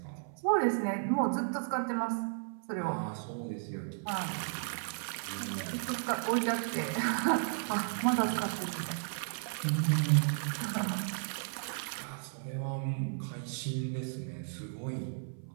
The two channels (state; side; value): silent; left; 55 dB below the other